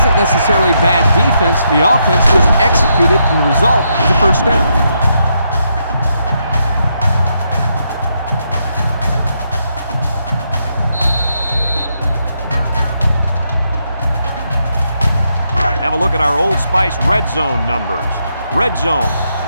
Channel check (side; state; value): both; inverted; correlation -0.80